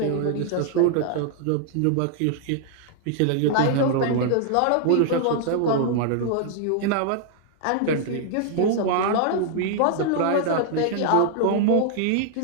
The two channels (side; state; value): both; different; correlation 0.00